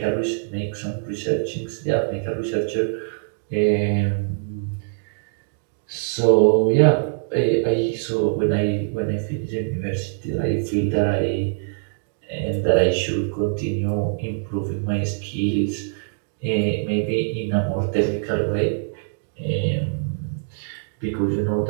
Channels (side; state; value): left; silent; digital silence